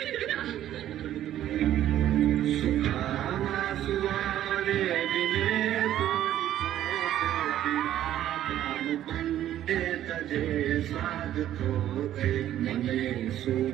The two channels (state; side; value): quieter; left; 12.1 dB